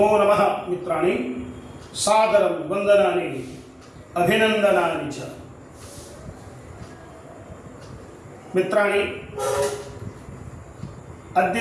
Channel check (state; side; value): identical; both; correlation 1.00